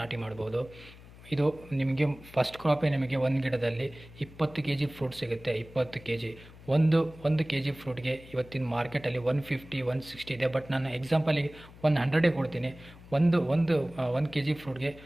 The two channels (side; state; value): left; noise; hum, 20 dB below the sound